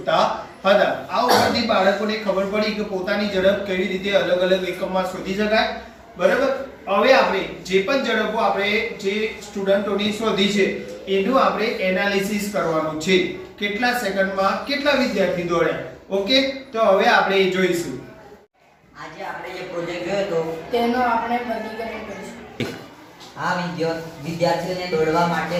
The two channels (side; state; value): both; identical; correlation 1.00